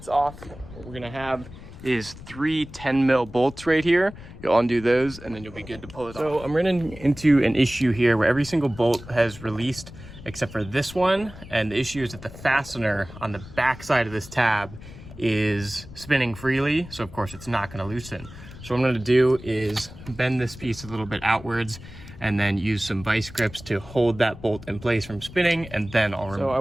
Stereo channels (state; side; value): noise; left; rumble, 16 dB below the sound